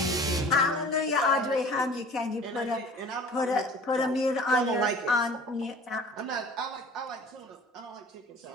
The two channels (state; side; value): normal; both; correlation 0.45